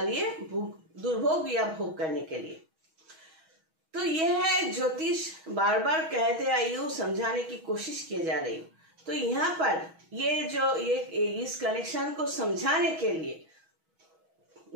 लिए दुर्भोग या भोग करने के लिए। तो ये है ज्योतिष, बार बार कहते आयु समझाने की कोशिश की जा रही। तो यहाँ पर ये इस कनेक्शन को समझाने के लिए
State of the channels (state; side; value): late; left; 6.2 ms